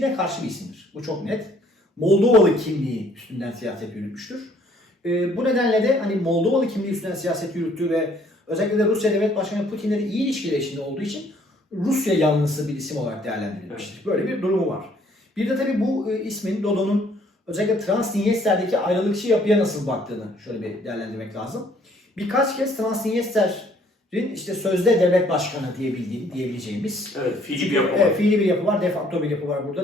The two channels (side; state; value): both; normal; correlation 0.62